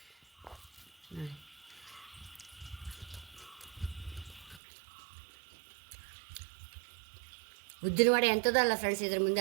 ನೋಡಿ. ಉದ್ದಿನ ವಡೆ ಎಂಥದಲ್ಲ ಫ್ರೆಂಡ್ಸ್, ಇದ್ರ ಮುಂದೆ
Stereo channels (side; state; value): left; drops out; at 4.6 s